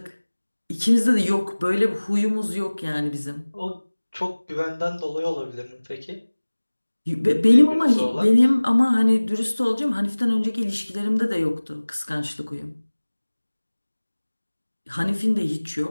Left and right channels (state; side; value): inverted; both; correlation -1.00